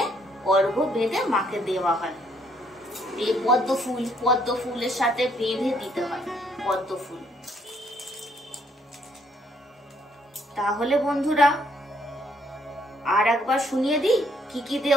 অর্ঘ্য বেঁধে মাকে দেওয়া হয়। এই পদ্ম ফুল, পদ্ম ফুলের সাথে বেঁধে দিতে হয় পদ্ম ফুল। তাহলে বন্ধুরা আর একবার শুনিয়ে দিই কি কি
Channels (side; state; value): both; normal; correlation 0.68